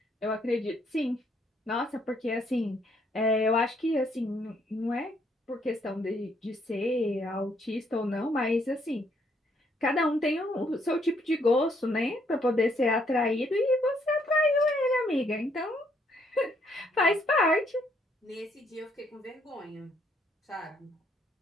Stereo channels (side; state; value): both; normal; correlation 0.70